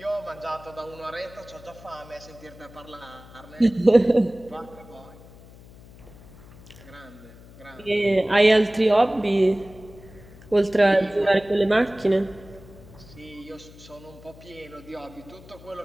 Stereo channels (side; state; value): left; noise; hum, 21 dB below the sound